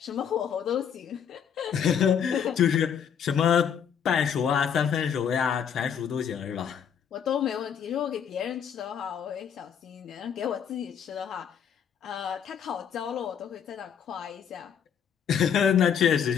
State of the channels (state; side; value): quieter; right; 8.0 dB